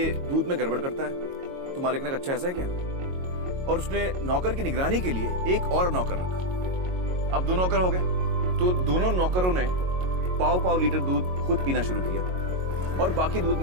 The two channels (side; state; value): left; late; 22 ms